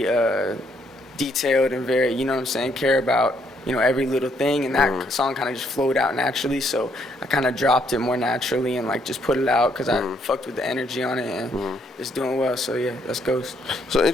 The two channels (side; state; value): both; normal; correlation 0.71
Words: detailed and very, you know what I'm saying, care about, every little thing. And that song kind of just flowed out naturally, so I kind of dropped it more naturally and like just put it out because I fucked with the energy on it, and it's doing well. So yeah, that's Ghost. So